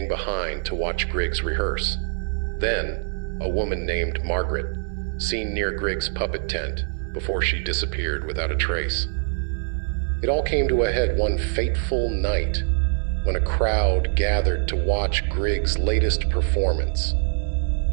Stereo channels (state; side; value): silent; left; 61 dB below the other